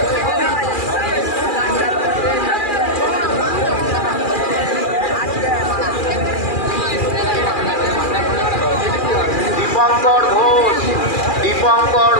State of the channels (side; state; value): right; late; 2.4 ms